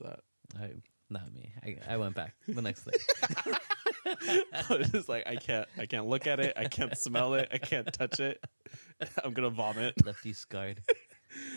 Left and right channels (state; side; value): inverted; both; correlation -1.00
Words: Not me. I went back the next day. I was just like, I can't look at it, I can't smell it, I can't touch it. I'm gonna vomit. Left you scarred.